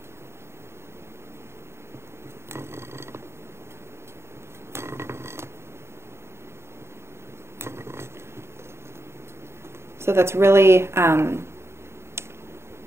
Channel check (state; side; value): late; left; 0.12 ms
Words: So that's really